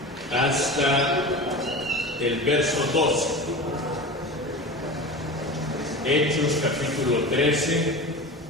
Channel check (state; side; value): normal; both; correlation 0.30